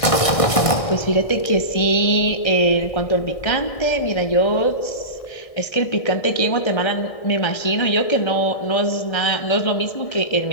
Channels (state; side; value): late; right; 1.6 ms